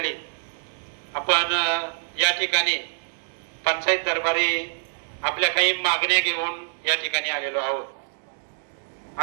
आपण या ठिकाणी पंचायत दरबारी आपल्या काही मागण्या घेऊन या ठिकाणी आलेलो आहोत।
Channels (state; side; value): silent; left; 61 dB below the other